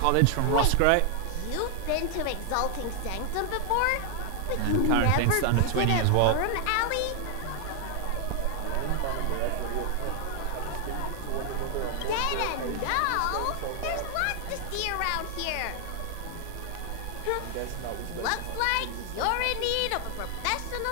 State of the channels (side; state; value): both; different; correlation 0.00